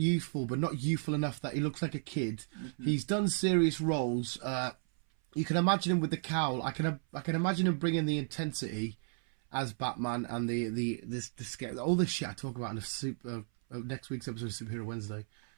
but not youthful enough that he looks like a kid. He's done serious roles. You can imagine him with the cowl. I can imagine him bringing the intensity as Batman and the scare, all this shit I talk about in the next week's episode of Superhero Wednesday.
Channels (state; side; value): silent; left; 55 dB below the other